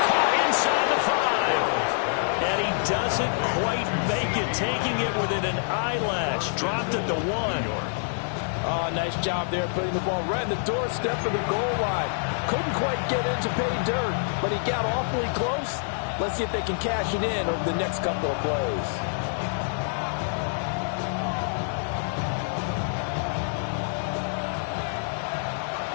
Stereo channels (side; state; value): right; silent; digital silence